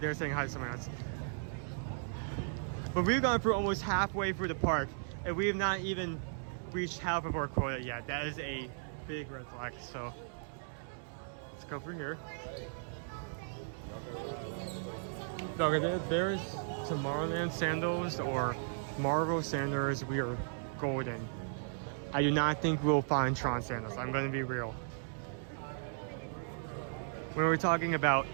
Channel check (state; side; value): silent; left; digital silence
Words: saying hi to someone else. But we've gone through almost halfway through the park, and we have not even reached half of our quota yet. That is a big red flag. So let's go through here. Okay, there's Tomorrowland sandals or Marvel sandals. We are golden. I do not think we'll find Tron sandals. I'm going to be real. When we're talking about